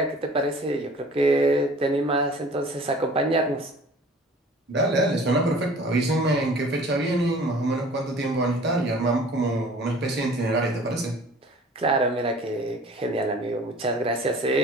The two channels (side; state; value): both; normal; correlation 0.47